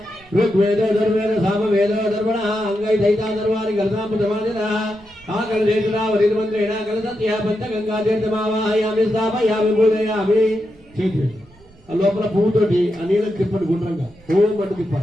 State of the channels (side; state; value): right; noise; rumble, 27 dB below the sound